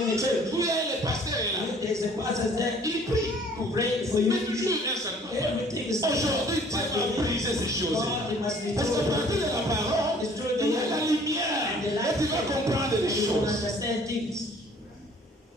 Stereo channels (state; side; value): normal; both; correlation 0.55